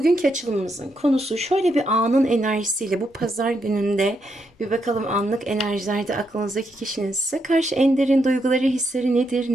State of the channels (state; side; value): normal; both; correlation 0.80